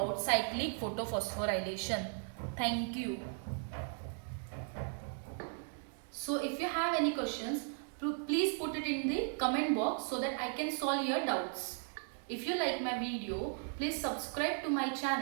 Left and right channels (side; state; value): left; silent; 53 dB below the other